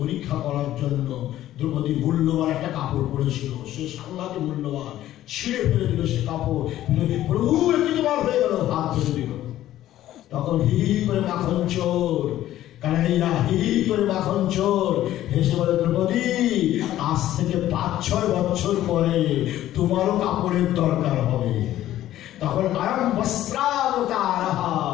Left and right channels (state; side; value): quieter; right; 13.4 dB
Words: করার জন্য দ্রৌপদী মূল্যবান একটা কাপড় পরেছিল, সে সাংঘাতিক মূল্যবান, ছিঁড়ে ফেলে দিল সে কাপড়। প্রভু একটি তোমার হয়ে গেল, হাত ফেলে দিল। তখন হি করে মাখন চোর, কানাইয়া হি করে মাখন চোর হেসে বলে, দ্রৌপদী আজ থেকে 5-6 বছর পরে তোমারও কাপড়ের দরকার হবে। তখন আয়ম বস্ত্রাবতার,